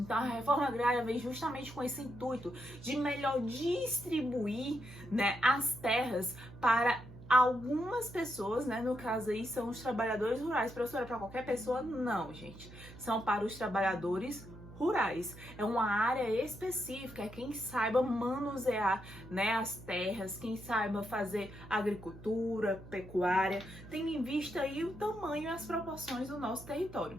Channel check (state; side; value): noise; right; hum, 17 dB below the sound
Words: a reforma agrária vem justamente com esse intuito de melhor distribuir, né, as terras para algumas pessoas, né, no caso aí são os trabalhadores rurais. Professora, para qualquer pessoa? Não, gente. São para os trabalhadores rurais. É uma área específica, é quem saiba manusear, né, as terras, quem saiba fazer agricultura, pecuária, tendo em vista aí o tamanho e as proporções do nosso